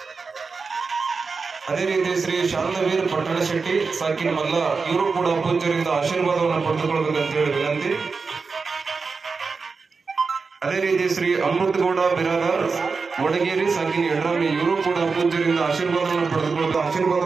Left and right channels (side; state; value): left; quieter; 4.7 dB